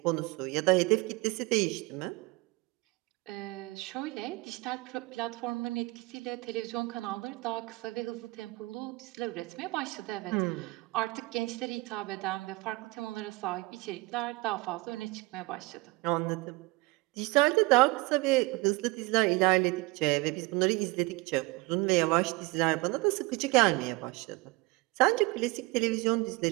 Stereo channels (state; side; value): quieter; left; 23.6 dB